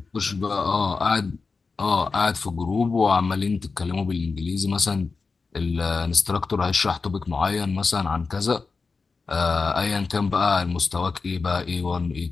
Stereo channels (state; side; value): quieter; right; 4.4 dB